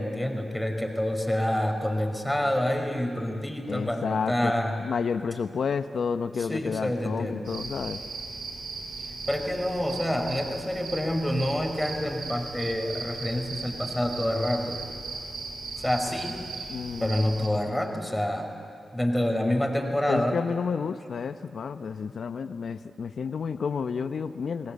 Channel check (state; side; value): normal; both; correlation 0.94